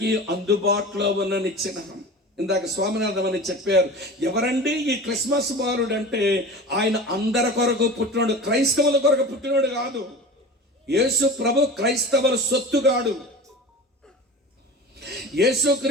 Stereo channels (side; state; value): both; normal; correlation 0.35